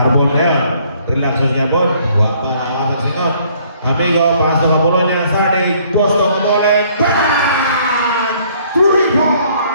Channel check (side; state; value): both; inverted; correlation -0.62